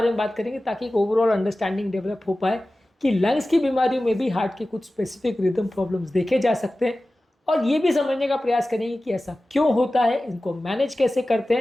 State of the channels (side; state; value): both; normal; correlation 0.96